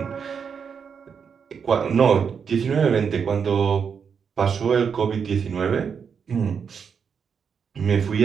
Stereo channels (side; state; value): left; quieter; 6.6 dB